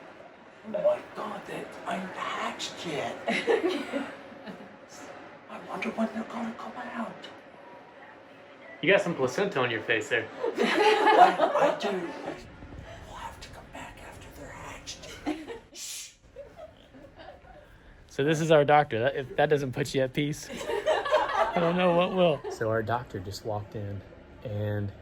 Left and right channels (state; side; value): identical; both; correlation 1.00